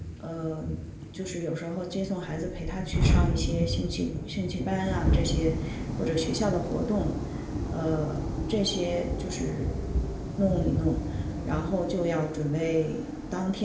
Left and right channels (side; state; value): both; identical; correlation 1.00